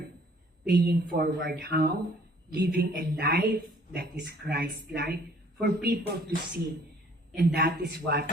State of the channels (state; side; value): normal; both; correlation 0.57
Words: Paying forward how? Living a life that is Christ-like for people to see. And that is what